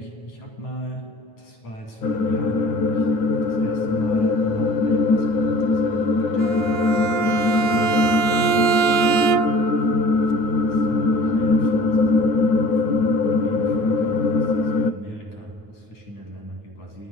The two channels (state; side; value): late; right; 9.3 ms